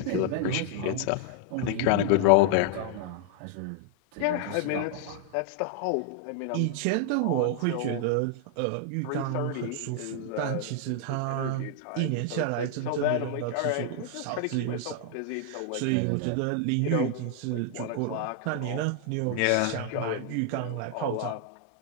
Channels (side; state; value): both; different; correlation 0.00